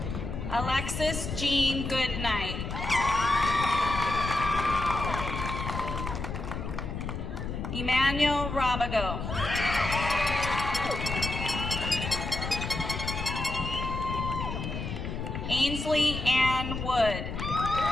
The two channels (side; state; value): left; noise; rumble, 5 dB below the sound